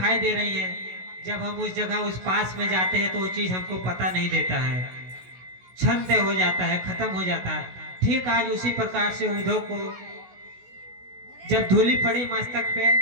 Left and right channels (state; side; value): late; left; 16 ms